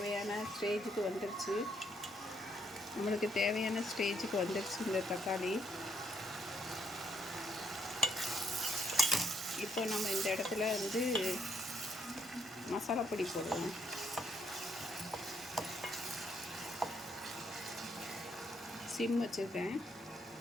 ஸ்டேஜுக்கு வந்துருச்சு. இந்த தக்காளி. இப்போ நம்ம இந்த இடத்துல வந்து மசாலா பொடி போடுவோம். சிம் வச்சுருக்கேன்.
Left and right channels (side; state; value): both; normal; correlation 0.73